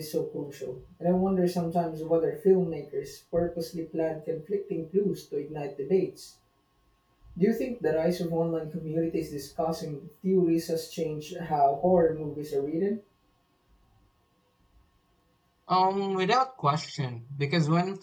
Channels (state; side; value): identical; both; correlation 1.00